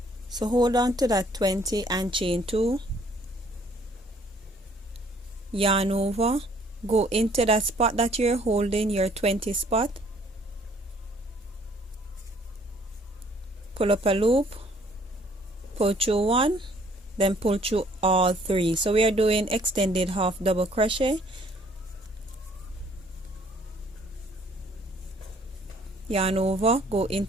So hold on to that 20 and chain 2, yarn over, go into that spot that you're holding, your 20 spot, pull up a loop, pull through one, then pull through all 3. So we are doing extended half double crochet, yarn over, go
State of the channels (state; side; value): normal; both; correlation 0.60